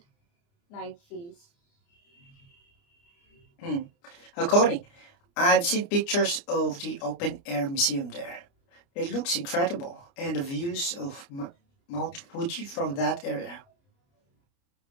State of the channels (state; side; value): late; right; 29 ms